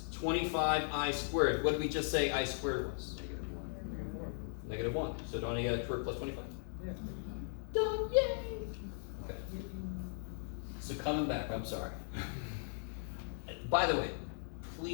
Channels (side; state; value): right; silent; digital silence